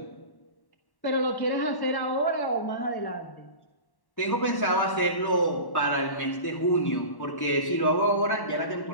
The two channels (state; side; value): late; right; 1.1 ms